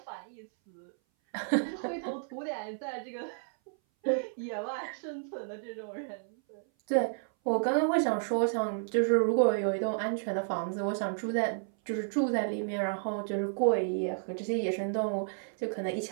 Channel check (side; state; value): left; silent; 57 dB below the other